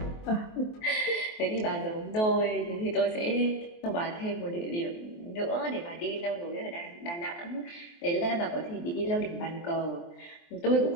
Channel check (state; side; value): late; right; 23 ms